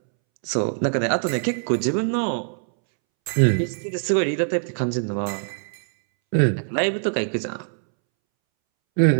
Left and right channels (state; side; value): silent; left; 63 dB below the other